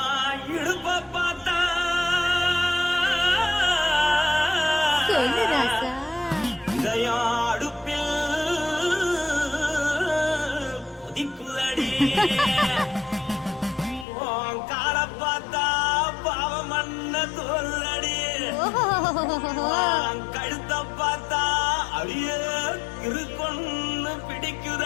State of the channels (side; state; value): right; drops out; at 14.1 s